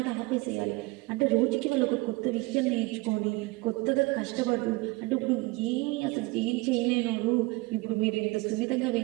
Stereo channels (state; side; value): quieter; left; 23.2 dB